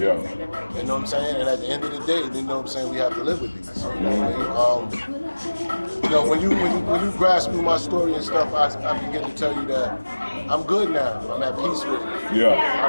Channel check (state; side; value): inverted; both; correlation -1.00